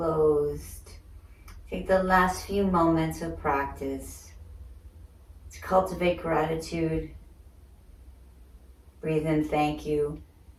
Take the last few moments of practice to cultivate gratitude. Breathe in, thank you.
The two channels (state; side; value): identical; both; correlation 1.00